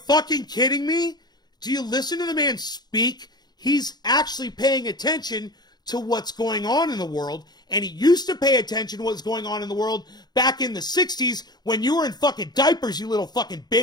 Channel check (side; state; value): right; late; 0.20 ms